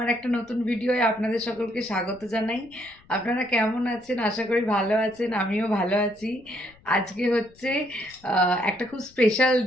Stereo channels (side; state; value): left; noise; rumble, 28 dB below the sound